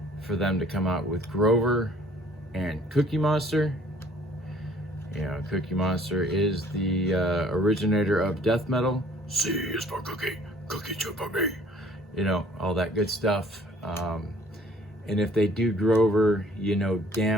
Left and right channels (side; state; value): both; normal; correlation 0.56